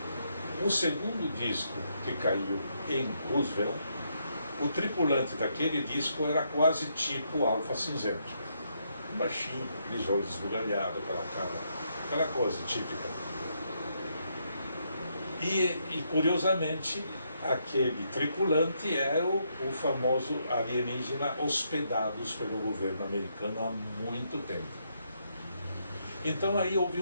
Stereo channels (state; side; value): inverted; both; correlation -0.77